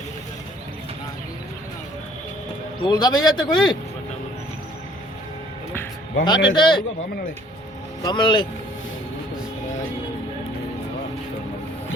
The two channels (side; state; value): both; normal; correlation 0.58